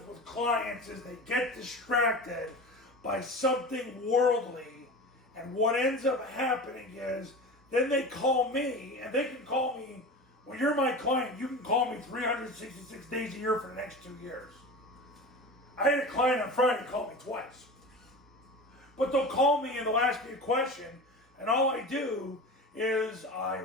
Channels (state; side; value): normal; both; correlation 0.31